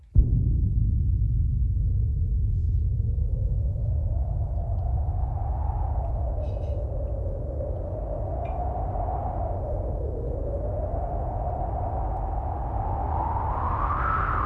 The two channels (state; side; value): identical; both; correlation 1.00